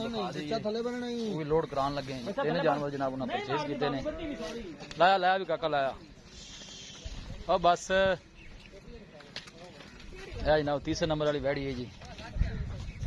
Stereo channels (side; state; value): both; identical; correlation 1.00